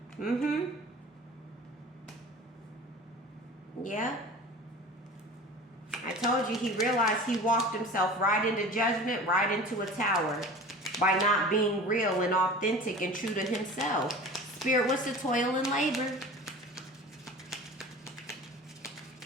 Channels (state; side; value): normal; both; correlation 0.38